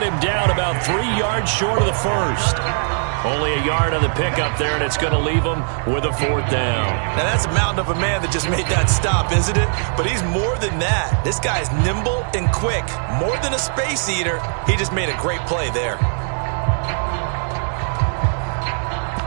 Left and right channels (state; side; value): silent; left; digital silence